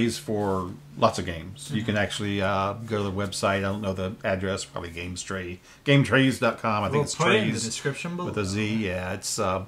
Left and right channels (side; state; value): both; identical; correlation 1.00